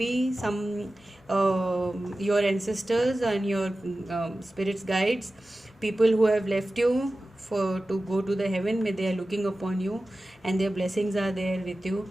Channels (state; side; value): normal; both; correlation 0.95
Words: some your ancestors and your spirits guides, people who have left you for to go to the heaven, may they are looking upon you and their blessings are there with you.